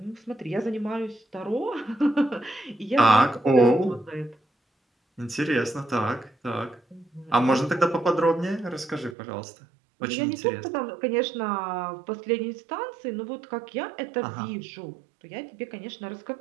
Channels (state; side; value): drops out; left; at 9.2 s